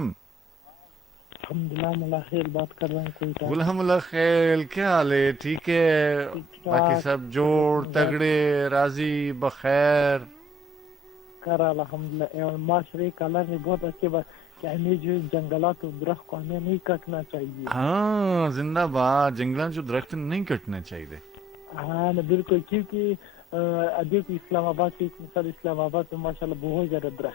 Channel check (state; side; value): normal; both; correlation 0.55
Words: الحمدللہ ملا خیر بات کر رہا ہوں کوئی الحمد اللہ خیر. کیا حال ہے؟ ٹھیک ہے؟ باقی سب جوڑ تگڑے راضی بخیر؟ کر الحمدللہ. معاشرے کلر نے بہت اچھے بات کہ ہمیں جو جنگلات و درخت کو ہمیں نہیں کٹنا چاہیے. ہاں زندہ باد. جنگلات جو درخت نہیں کٹنے چاہیے. ہاں بالکل, کیونکہ دیکھو اسلام آباد کی مثال, اسلام آباد میں ماشاء اللہ بہت زیادہ